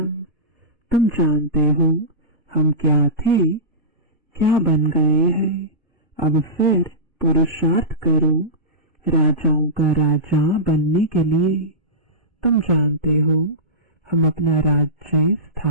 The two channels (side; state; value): both; normal; correlation -0.18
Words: तुम जानते हो हम क्या थे, क्या बन गए हैं। अब फिर पुरुषार्थ करो राजाओं का राजा बनने के लिए। तुम जानते हो हम अपना राज्य